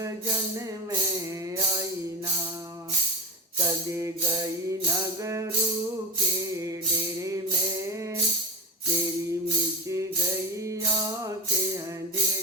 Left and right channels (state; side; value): normal; both; correlation 0.24